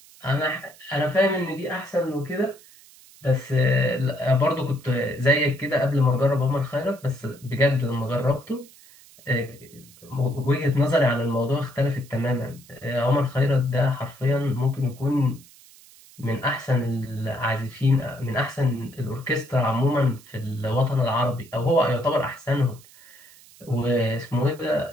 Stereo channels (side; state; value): right; noise; hiss, 24 dB below the sound